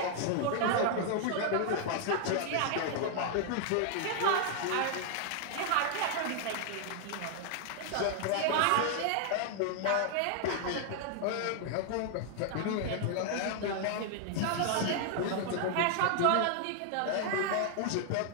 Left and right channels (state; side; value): different; both; correlation 0.00